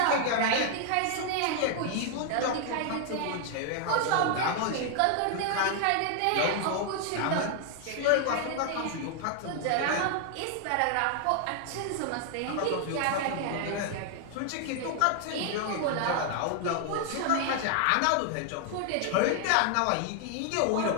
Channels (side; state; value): both; different; correlation 0.00